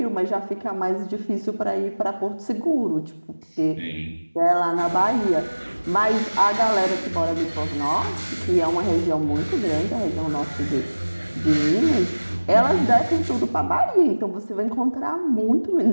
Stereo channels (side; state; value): both; inverted; correlation -1.00